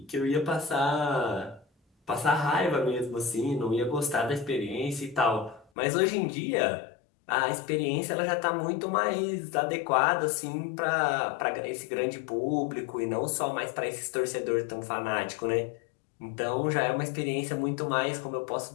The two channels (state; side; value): drops out; right; at 5.7 s